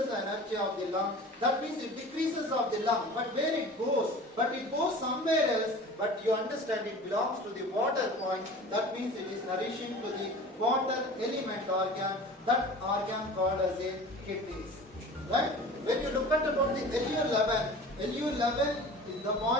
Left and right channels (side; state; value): both; normal; correlation 0.39